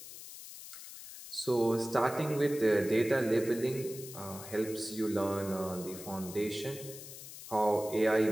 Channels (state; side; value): noise; left; hiss, 13 dB below the sound